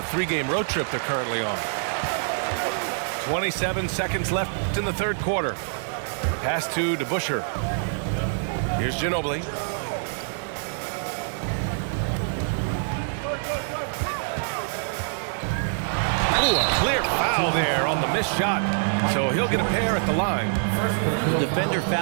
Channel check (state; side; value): silent; left; digital silence